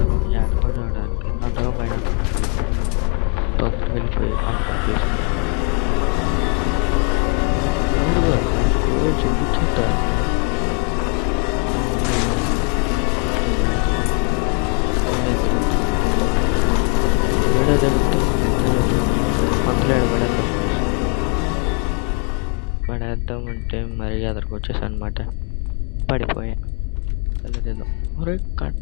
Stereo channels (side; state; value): right; quieter; 35.8 dB